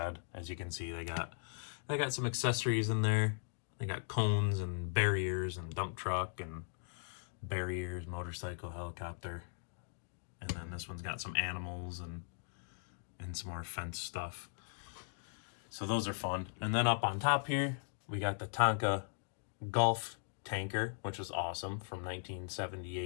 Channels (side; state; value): right; silent; digital silence